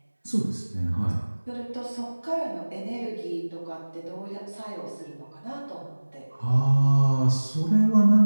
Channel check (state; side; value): inverted; both; correlation -1.00